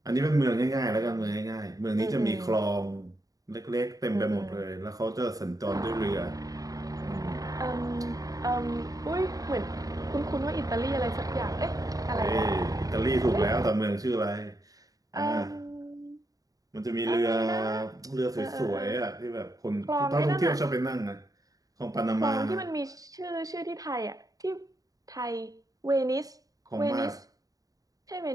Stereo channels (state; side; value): late; left; 0.17 ms